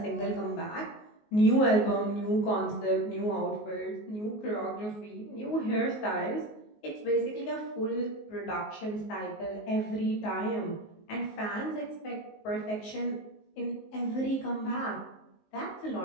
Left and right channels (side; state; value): right; late; 19 ms